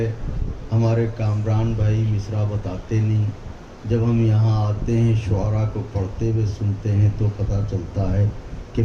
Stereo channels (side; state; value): both; identical; correlation 1.00